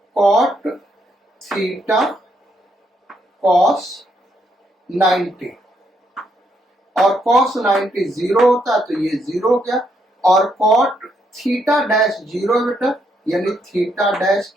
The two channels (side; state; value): both; normal; correlation 0.75